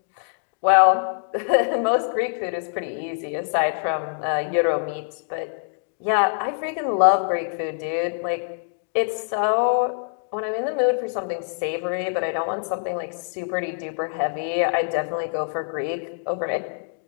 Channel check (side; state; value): right; silent; digital silence